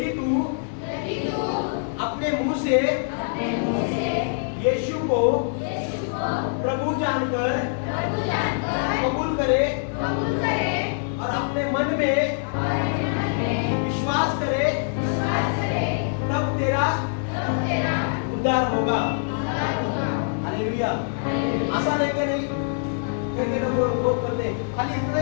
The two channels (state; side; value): silent; right; digital silence